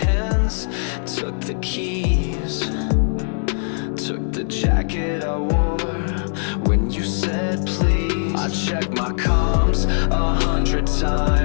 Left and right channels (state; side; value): silent; right; digital silence